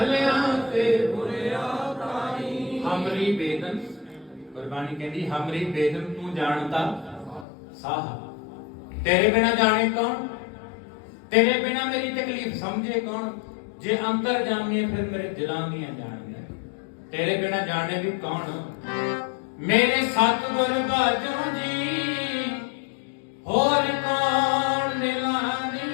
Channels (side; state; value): right; drops out; at 7.5 s